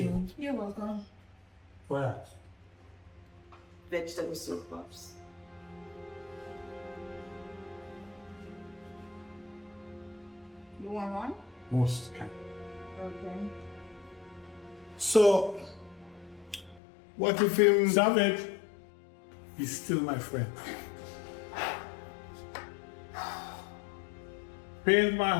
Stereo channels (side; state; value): right; drops out; at 16.8 s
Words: You're welcome. What? Vegetable soup, Pops. You want one? Most can. Okay. So, what if him... Savage, he's still my friend. Pains my